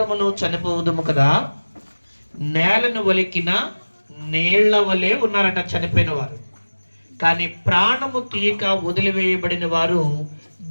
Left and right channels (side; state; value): both; inverted; correlation -1.00